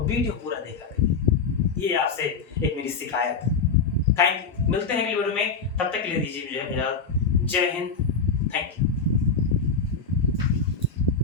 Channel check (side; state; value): right; quieter; 5.1 dB